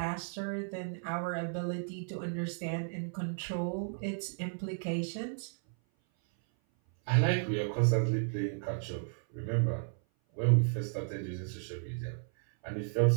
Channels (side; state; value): left; silent; 55 dB below the other